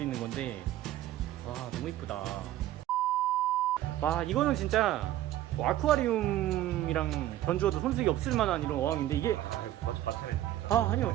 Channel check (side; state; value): left; quieter; 13.8 dB